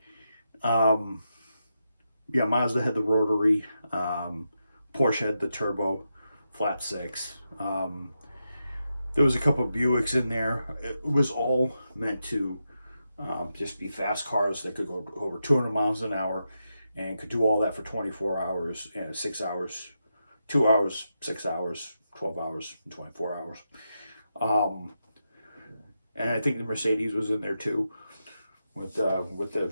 Mazda had the rotary. Porsche had the turbo flat 6. There was a couple of Buicks in there. It was all meant to just be fast cars that could go over 200 miles an hour and could do all that for 24 hours and 6 hours, 2 hours, 6 hours, 12 hours, and 24 hours. And I think the Mercedes was in there too, with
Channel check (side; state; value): both; inverted; correlation -0.86